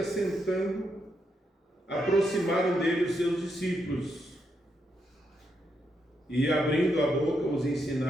aproximaram dele os seus discípulos. E, abrindo a boca, os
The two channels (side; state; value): both; normal; correlation 0.81